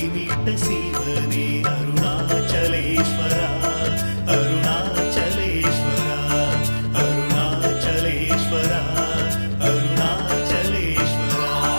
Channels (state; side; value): inverted; both; correlation -1.00